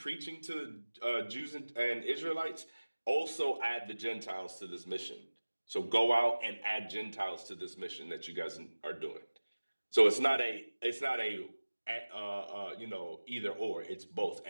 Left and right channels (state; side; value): inverted; both; correlation -1.00